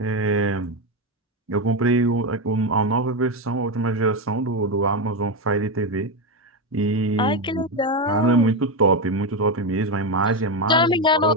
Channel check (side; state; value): both; normal; correlation 0.10